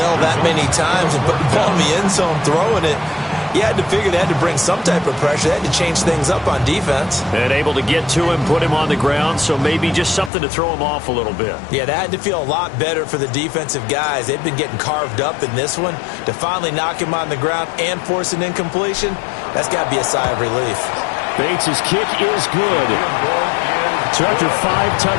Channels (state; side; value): drops out; right; at 10.3 s